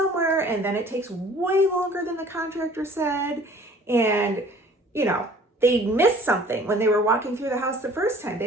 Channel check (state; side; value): normal; both; correlation 0.51